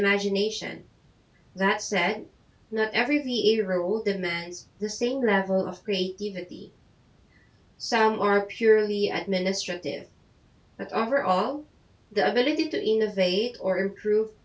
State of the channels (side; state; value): both; identical; correlation 1.00